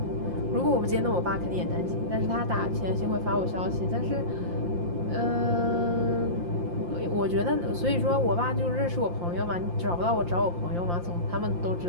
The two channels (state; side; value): late; left; 5.7 ms